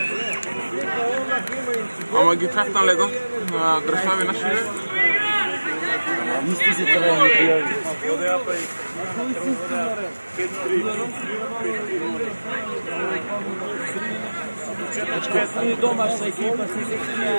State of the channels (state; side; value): inverted; both; correlation -1.00